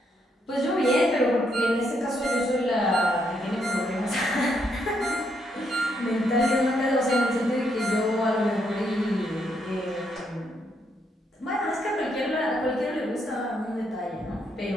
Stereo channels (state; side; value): normal; both; correlation 0.76